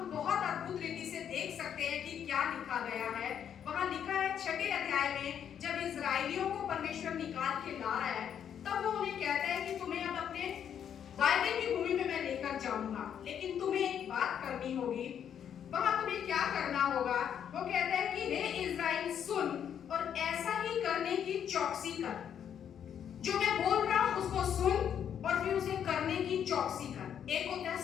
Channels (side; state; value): right; quieter; 8.8 dB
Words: बहुत अद्भुत रीति से देख सकते हैं कि क्या लिखा गया है। वहां लिखा है 6वें अध्याय में, जब इजराइलियों को परमेश्वर निकाल के ला रहा है, तब वो उन्हें कहता है कि तुम्हें अब अपने वायदे की भूमि में मैं लेकर जाऊंगा, लेकिन तुम्हें एक बात करनी होगी। वहां तुम्हें क्या करना होगा? वो कहता है कि हे इज़राइल सुन और ऐसा ही करने की चौकसी कर। जो मैं बोल रहा हूं उसको सुन और फिर उसे करने की चौकसी कर। एक होता है